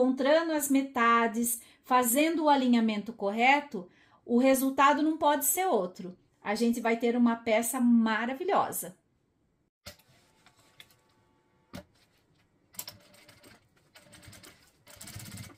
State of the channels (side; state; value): both; identical; correlation 1.00